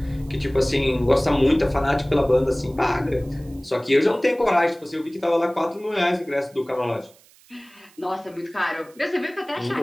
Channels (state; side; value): noise; right; hiss, 28 dB below the sound